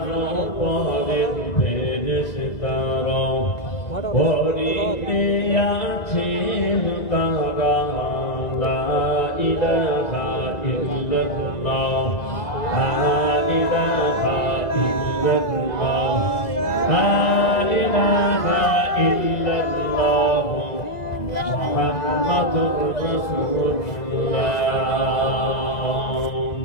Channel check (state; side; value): late; right; 2.0 ms